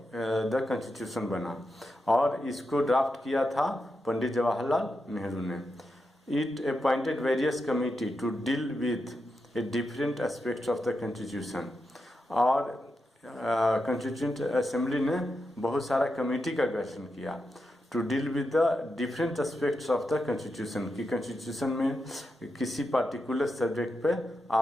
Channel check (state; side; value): normal; both; correlation 0.87